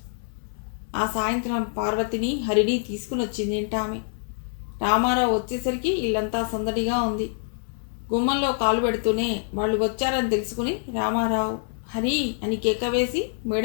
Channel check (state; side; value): silent; right; 61 dB below the other